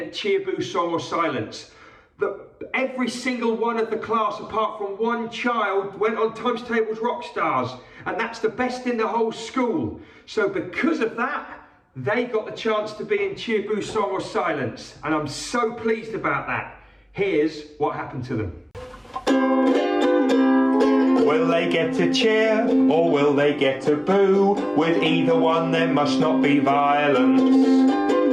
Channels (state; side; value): identical; both; correlation 1.00